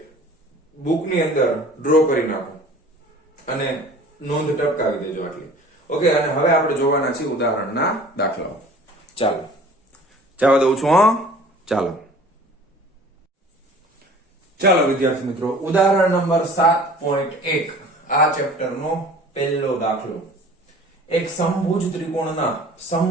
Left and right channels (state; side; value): normal; both; correlation 0.46